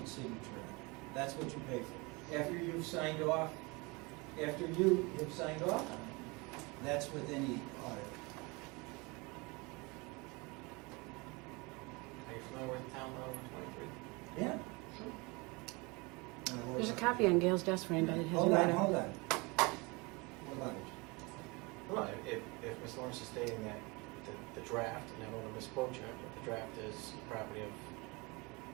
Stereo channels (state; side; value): quieter; left; 26.7 dB